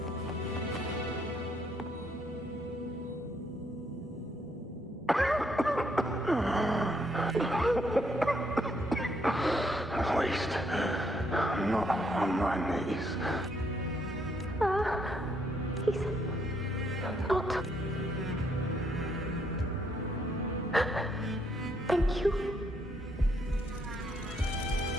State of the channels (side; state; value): both; normal; correlation 0.72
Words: At least, I'm not on my knees. He's not. Thank you.